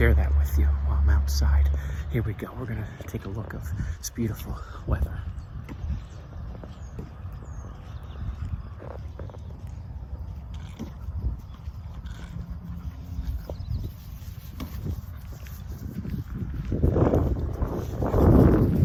that with you while I'm outside. Here we go. We're gonna take a look of this beautiful weather.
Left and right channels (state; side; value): identical; both; correlation 1.00